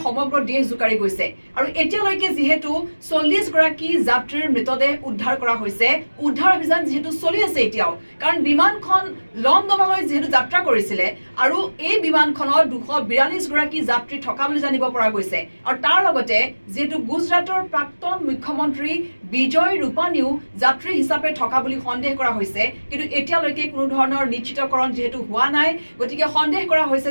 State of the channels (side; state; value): both; inverted; correlation -1.00